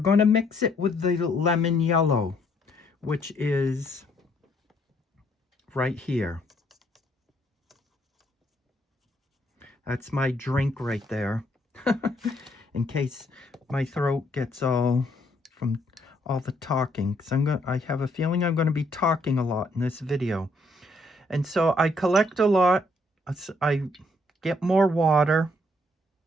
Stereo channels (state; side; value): normal; both; correlation 0.69